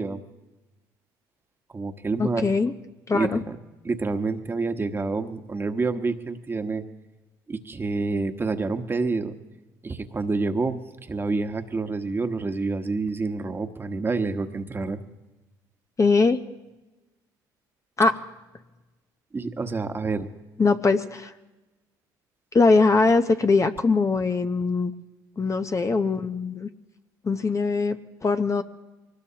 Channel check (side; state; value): both; normal; correlation 0.82